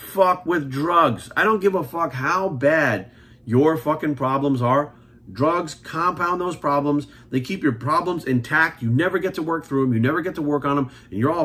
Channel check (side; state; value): both; identical; correlation 1.00